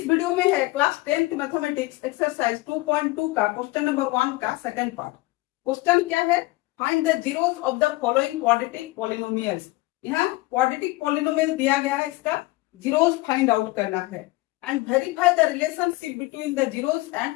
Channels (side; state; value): right; quieter; 20.8 dB